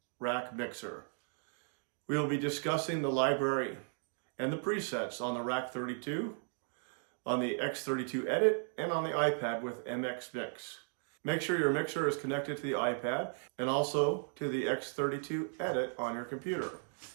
rack mixer. We will be discussing the library and the presets on the Rack 32, on the X32 Edit, and on the iPad with MX Mix. Make sure your mixer is connected to the iPad and also to the X32 Edit on your computer.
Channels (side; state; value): left; silent; 54 dB below the other